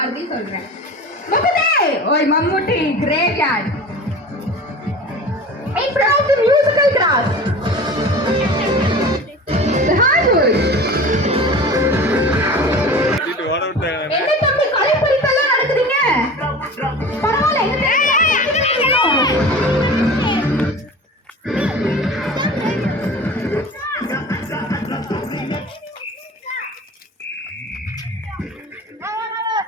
சொல்றேன். முகுந்தே ஓய் Mammootty graveyard. In front of the musical grass. The hardwood. என்ன தம்பி கலைப்பறிப்பெல்லாம் நடக்குதுங்க? பரவாயில்ல.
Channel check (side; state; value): both; normal; correlation 0.37